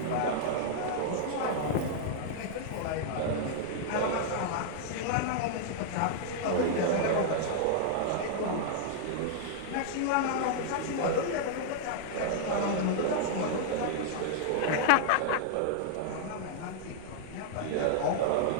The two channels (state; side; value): different; both; correlation -0.01